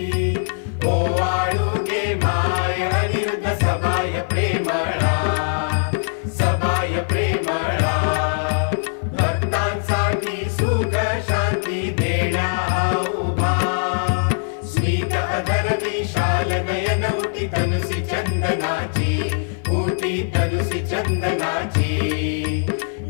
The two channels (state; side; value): silent; right; 55 dB below the other